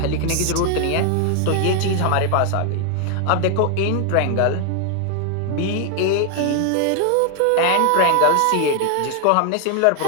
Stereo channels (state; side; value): different; both; correlation 0.00